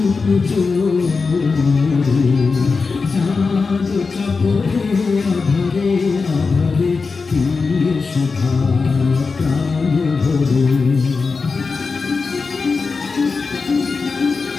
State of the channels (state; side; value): quieter; right; 4.5 dB